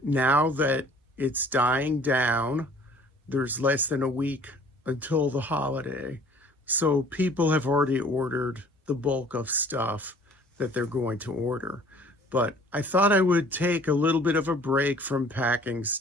now that it's dying down, there's less than a week until the holiday. So people have already ordered the bulk of stuff that they're going to order. But I thought I would take a little bit of a break from packing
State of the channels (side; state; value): both; normal; correlation 0.52